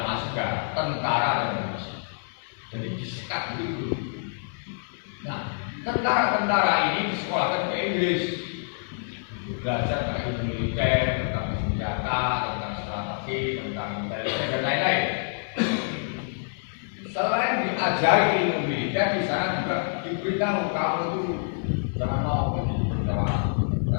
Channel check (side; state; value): right; silent; 60 dB below the other